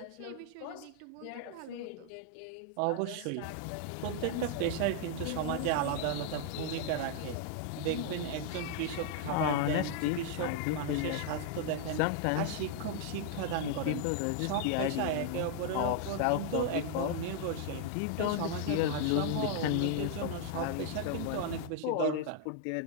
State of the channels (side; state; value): both; different; correlation 0.00